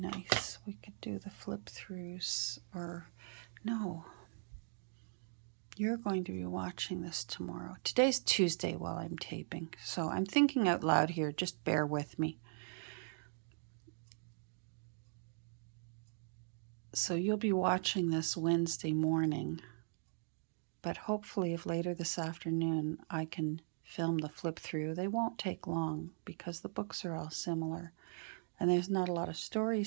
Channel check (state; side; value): silent; left; digital silence